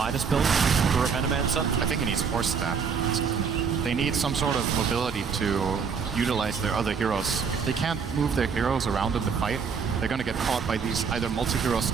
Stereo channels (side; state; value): left; quieter; 6.1 dB